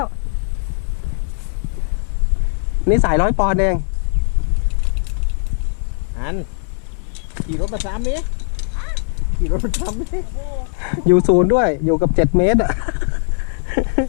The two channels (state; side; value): silent; right; 59 dB below the other